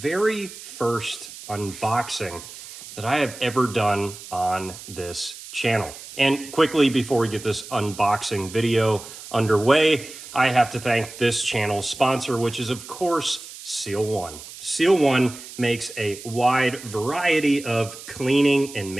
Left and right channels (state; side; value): noise; right; hiss, 14 dB below the sound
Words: first unboxing that I have ever done on this channel. And quickly, before we get this unboxing video underway, I have to thank this channel's sponsor, which is, of course, Seal One. Seal One makes a wide variety of cleaning and